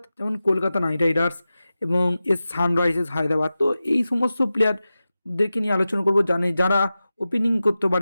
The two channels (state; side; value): inverted; both; correlation -0.94